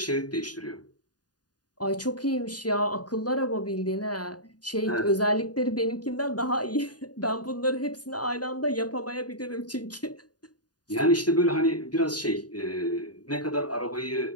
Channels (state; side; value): late; right; 0.69 ms